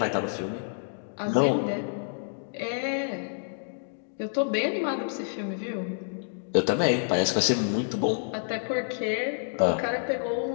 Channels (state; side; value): silent; right; digital silence